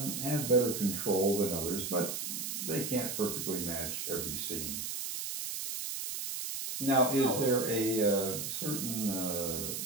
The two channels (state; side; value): noise; right; hiss, 4 dB below the sound